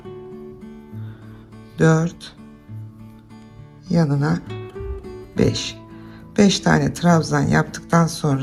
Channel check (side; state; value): both; identical; correlation 1.00